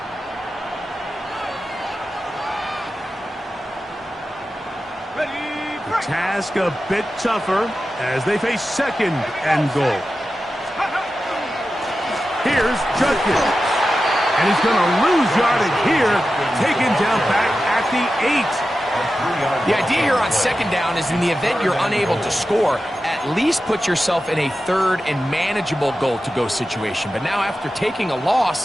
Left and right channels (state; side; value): normal; both; correlation 0.92